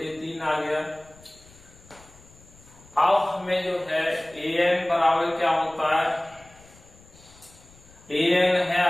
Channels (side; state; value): left; noise; rumble, 25 dB below the sound